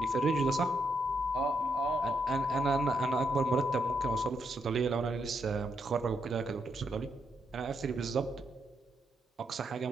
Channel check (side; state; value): both; normal; correlation 0.79